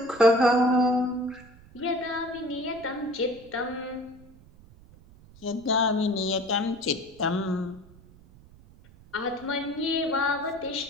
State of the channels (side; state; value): right; noise; rumble, 23 dB below the sound